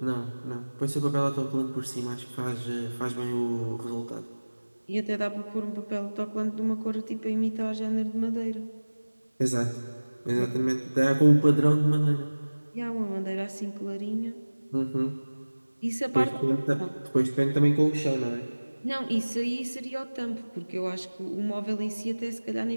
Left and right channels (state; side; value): inverted; both; correlation -1.00